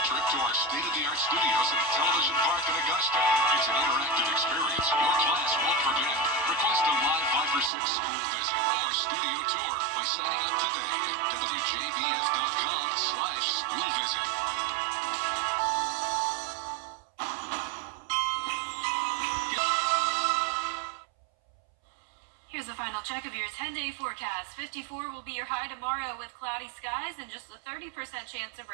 trip to our state-of-the-art studios at Television Park in Augusta. It's an interactive experience your class won't forget. Request a live 5 for 6 school visit or studio tour by signing up today at WJBF.com/school visit. Here's a final check of your 10-day forecast. 54 will be your high tomorrow with cloudy skies and just a 30% chance of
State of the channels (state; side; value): drops out; left; at 7.7 s